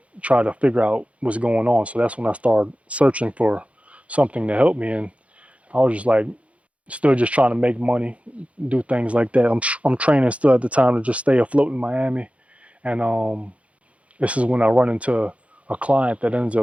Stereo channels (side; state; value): left; late; 0.064 ms